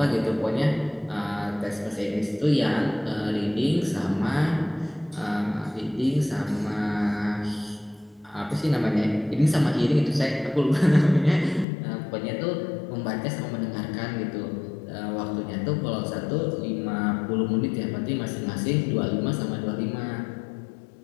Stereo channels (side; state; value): right; drops out; at 11.7 s